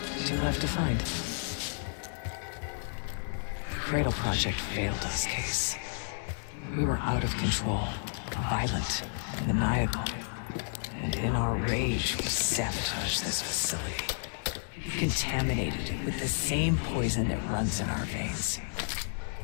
2 left to find. The Cradle Project failed us, Case. We were out of control, violent, maniacal. And in our rage, we sabotaged this facility. Contaminated it with the same poison that runs in our veins.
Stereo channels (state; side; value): silent; right; digital silence